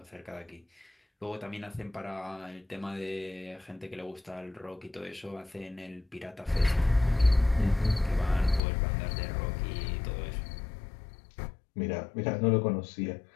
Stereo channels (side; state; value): right; drops out; at 8.6 s